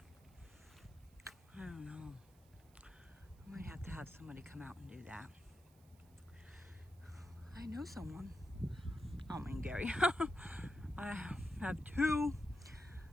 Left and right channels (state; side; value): noise; right; hiss, 29 dB below the sound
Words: I don't know. I might have to have somebody come out and do that. I know someone. I don't mean Gary. I have two.